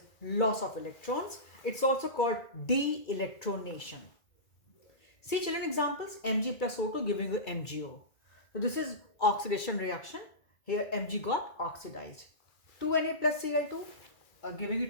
loss of electrons. It's also called de-electronation. See children, examples: Mg plus O2 giving you MgO. So this is oxidation reaction. Here Mg got oxidized. 2Na plus Cl2 giving you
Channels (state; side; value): late; right; 2.3 ms